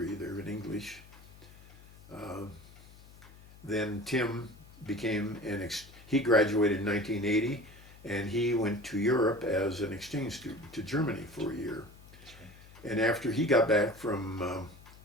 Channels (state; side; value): noise; left; hum, 21 dB below the sound